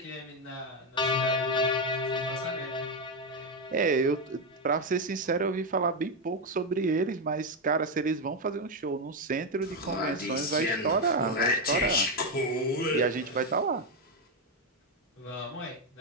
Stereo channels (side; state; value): both; normal; correlation 0.06